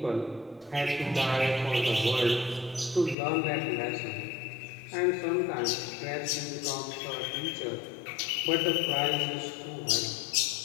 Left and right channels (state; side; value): drops out; right; at 3.2 s